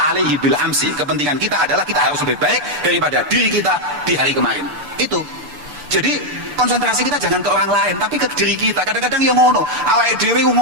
alaihi bil amsi. Kepentingan kita adalah kita harus lebih baik daripada diri kita di hari kemarin. Itu. Jadi konsentrasi kita jangan ke orang lain, tapi ke diri kita. Kadang-kadang yang ngono, awake dhewe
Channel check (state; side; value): late; left; 6.8 ms